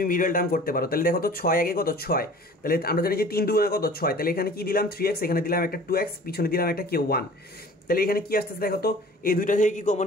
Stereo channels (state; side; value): normal; both; correlation 0.45